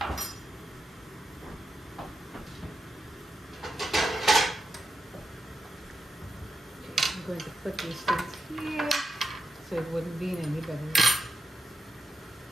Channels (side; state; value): both; normal; correlation 0.86